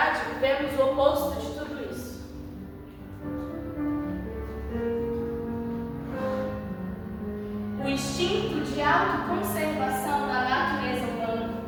vivemos o oposto de tudo isso. O instinto de autoconservação da natureza humana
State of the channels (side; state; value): both; identical; correlation 1.00